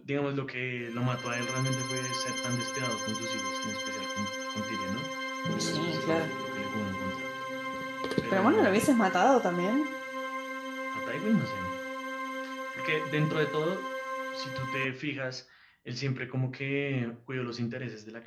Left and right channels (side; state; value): both; identical; correlation 1.00